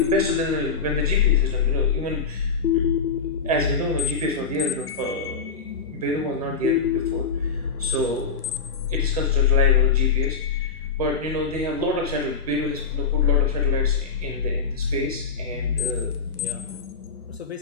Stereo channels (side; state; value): right; quieter; 5.3 dB